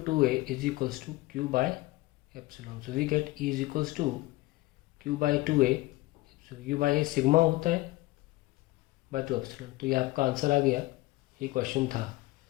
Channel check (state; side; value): quieter; right; 19.7 dB